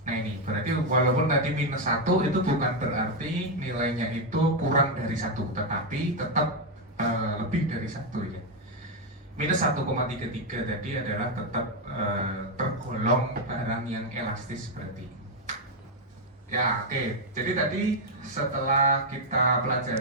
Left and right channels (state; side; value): normal; both; correlation 0.02